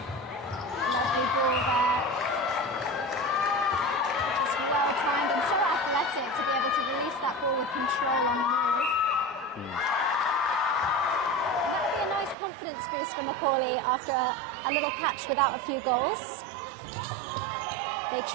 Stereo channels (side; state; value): left; drops out; at 12.4 s